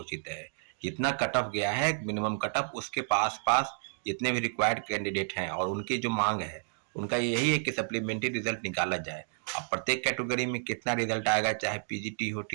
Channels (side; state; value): left; silent; 56 dB below the other